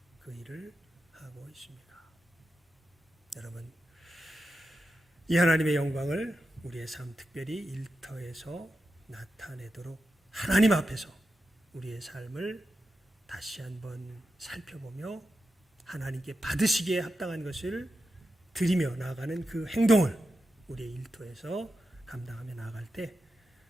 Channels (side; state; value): both; normal; correlation 0.90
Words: 그 일을 하고 있습니까? 여러분, 이 하나님의 영광을 우리의 삶, 특별히 일터에서 나타내도록 하나님 앞에서 우리의 삶을 다시 한번 살펴보며 하나님께 받으시기에 합당한 것을 드리며 나아가는 그 행동을 우리의 일터에서 감당하며 나아갈 때